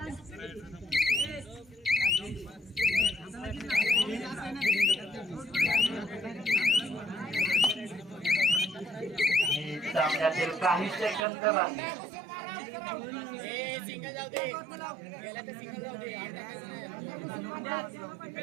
सामन्यातील काही सेकंद बाकी सिंगल जाऊ दे गेला तर सिंगल जाऊ दे 8 टाकायचं नाही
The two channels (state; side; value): drops out; left; at 11.2 s